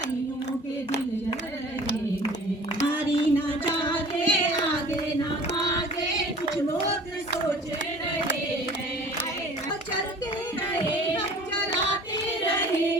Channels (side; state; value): both; normal; correlation 0.47